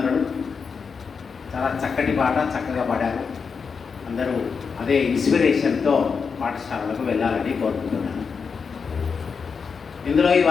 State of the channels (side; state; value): right; quieter; 5.6 dB